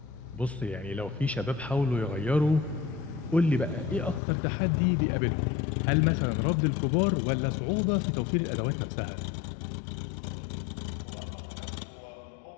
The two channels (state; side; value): drops out; right; at 4.2 s